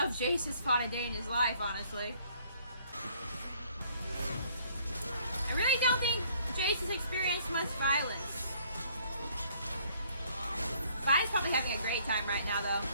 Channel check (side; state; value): both; inverted; correlation -0.61